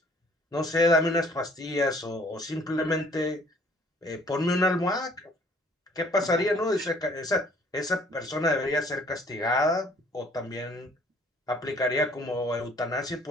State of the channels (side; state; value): both; normal; correlation 0.58